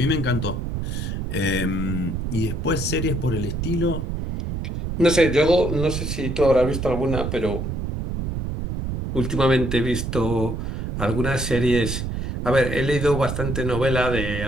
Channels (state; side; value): noise; right; rumble, 3 dB below the sound